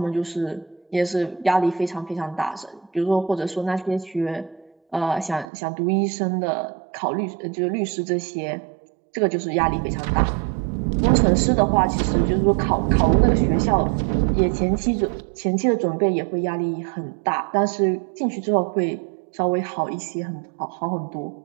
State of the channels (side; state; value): left; drops out; at 5.5 s